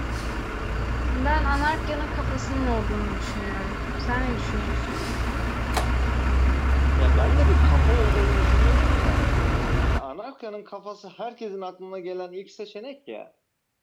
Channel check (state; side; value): identical; both; correlation 1.00